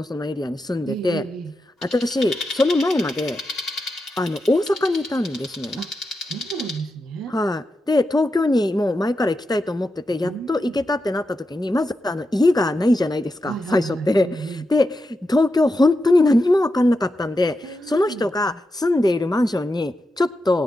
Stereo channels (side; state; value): both; normal; correlation 0.88